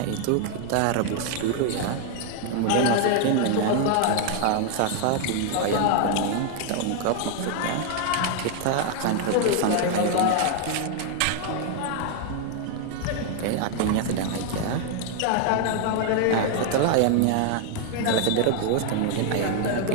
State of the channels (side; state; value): both; different; correlation 0.00